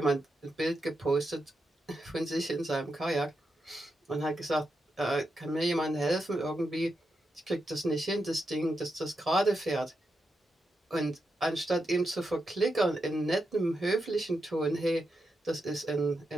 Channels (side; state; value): both; normal; correlation 0.86